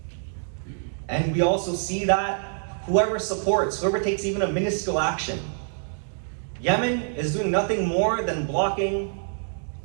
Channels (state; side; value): silent; left; digital silence